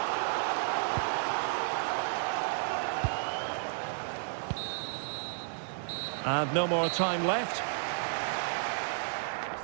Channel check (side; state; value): left; silent; digital silence